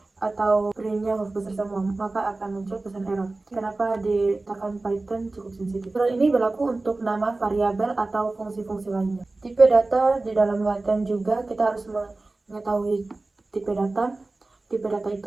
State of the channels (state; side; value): quieter; left; 3.2 dB